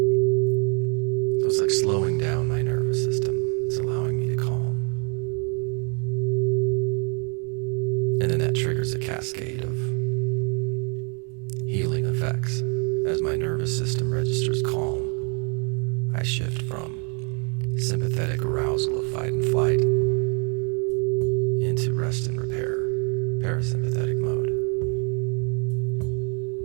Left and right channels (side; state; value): left; quieter; 36.0 dB